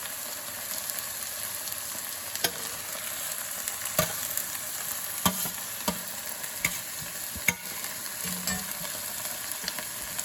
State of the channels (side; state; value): both; identical; correlation 1.00